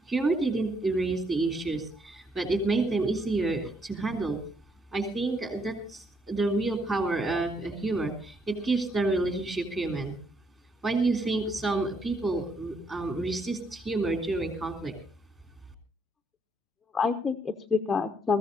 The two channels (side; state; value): both; normal; correlation 0.72